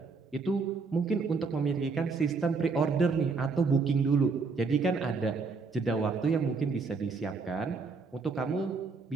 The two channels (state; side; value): quieter; left; 4.5 dB